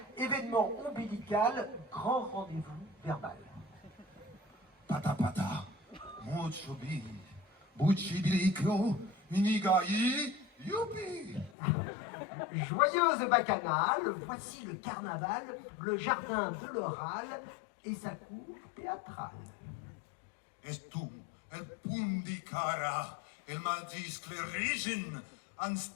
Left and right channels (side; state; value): right; drops out; at 11.5 s